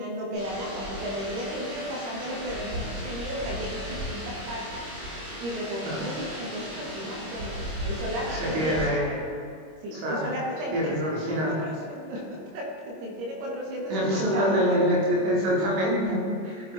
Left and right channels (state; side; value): late; left; 26 ms